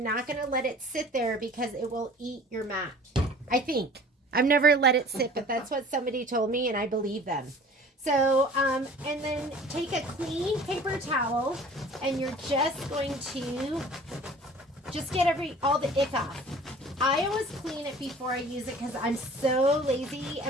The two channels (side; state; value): both; normal; correlation 0.46